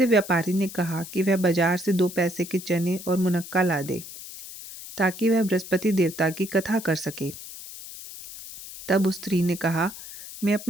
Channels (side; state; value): left; noise; hiss, 13 dB below the sound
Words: व्यापारी ने कहा कि वह बाजार से 2 पैसे के चने और मुनक्का ला दे, ताकि वह बृहस्पति देवता की कथा कर सके। तब उस स्त्री ने कहा, मैं